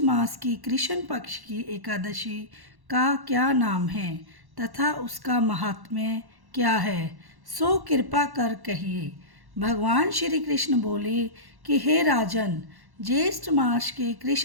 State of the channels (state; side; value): late; left; 1.1 ms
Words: मास की कृष्ण पक्ष की एकादशी का क्या नाम है तथा उसका महात्म्य क्या है, सो कृपा कर कहिए। भगवान श्री कृष्ण बोले कि हे राजन, ज्येष्ठ मास के